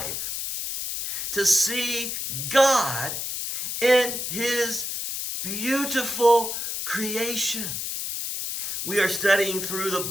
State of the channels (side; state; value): left; noise; hiss, 4 dB below the sound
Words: to see God in His beautiful creation. We are studying through the